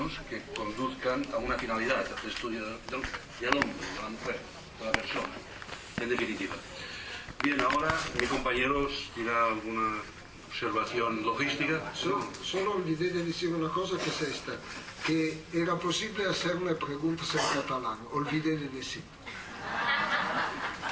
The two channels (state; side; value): identical; both; correlation 1.00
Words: que conduzcan a una finalidad, al estudio del hombre, de la mujer, de la persona, en definitiva. Bien, ahora mi compañero dirá alguna observación logística. Solo olvidé de decir una cosa, que es esta, que era posible hacerme preguntas en catalán, olvidé de decir.